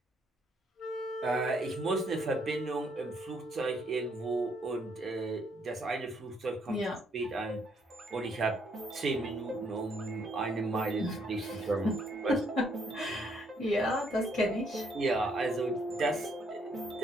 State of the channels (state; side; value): normal; both; correlation 0.70